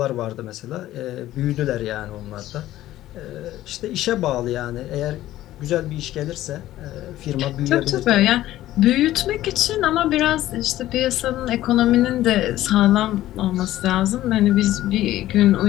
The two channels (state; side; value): quieter; right; 14.5 dB